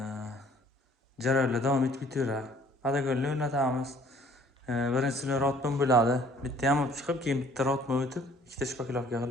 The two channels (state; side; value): normal; both; correlation 0.57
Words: jarayonlar davom etib ketaveradi. Podagonni o'rnatamiz. Birinchisilar rotman bo'ladi. Bitta yamab chiqib, keyin bitta rotman o'tib, ikkita shpakilovka